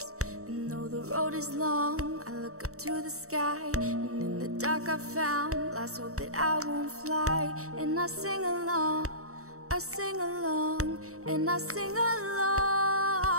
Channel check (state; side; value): late; left; 0.64 ms